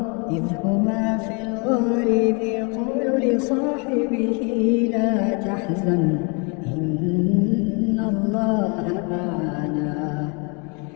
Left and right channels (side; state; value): right; quieter; 33.8 dB